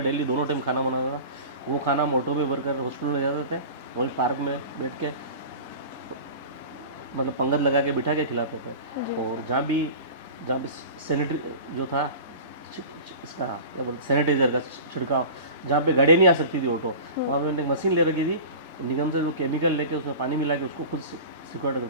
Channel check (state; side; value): inverted; both; correlation -0.36